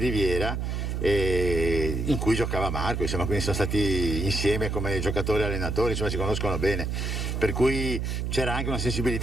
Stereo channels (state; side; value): noise; right; hum, 2 dB below the sound